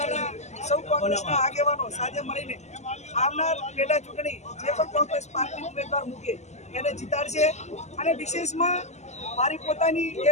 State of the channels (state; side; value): late; right; 0.33 ms